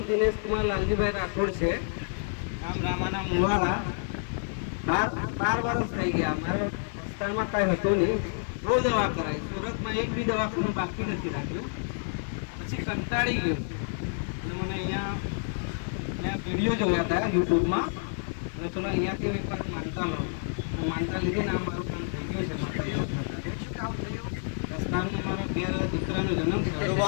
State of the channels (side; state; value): right; silent; 59 dB below the other